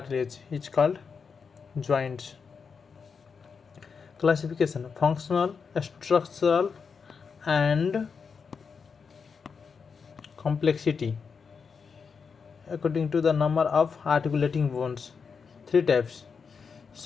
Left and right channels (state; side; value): quieter; right; 5.7 dB